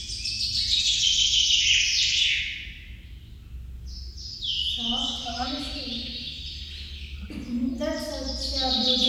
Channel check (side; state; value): both; identical; correlation 1.00